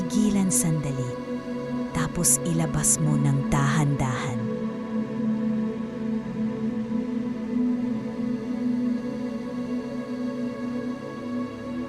sandali, tapos ilabas mo ng dahan-dahan.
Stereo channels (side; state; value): both; identical; correlation 1.00